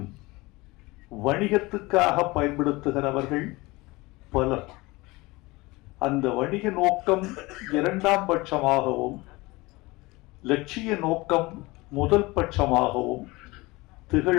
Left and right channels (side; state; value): right; quieter; 22.3 dB